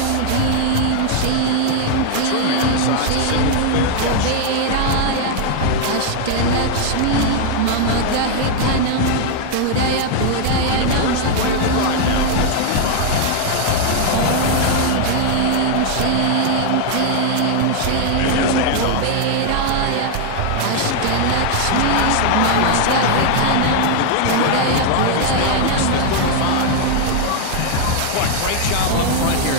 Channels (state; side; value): different; both; correlation 0.00